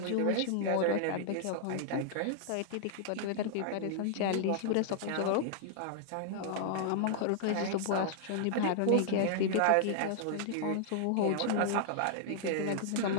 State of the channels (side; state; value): both; different; correlation -0.01